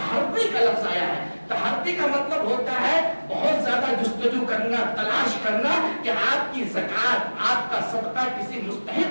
کا لفظ آیا ہے. تحری کا مطلب ہوتا ہے بہت زیادہ جستجو کرنا، تلاش کرنا کہ آپ کی زکات، آپ کا صدقہ کسی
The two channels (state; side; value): inverted; both; correlation -1.00